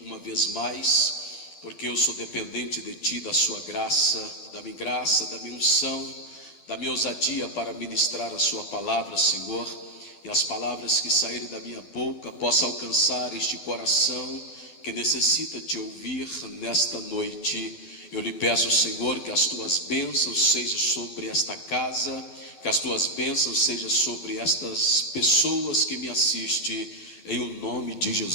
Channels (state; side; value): late; right; 12 ms